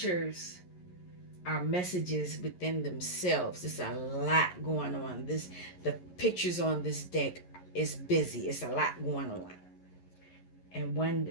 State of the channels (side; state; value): right; late; 11 ms